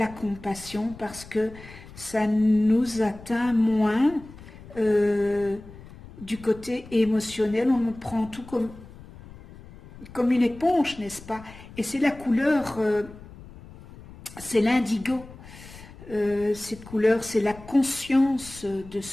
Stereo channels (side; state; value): left; noise; rumble, 18 dB below the sound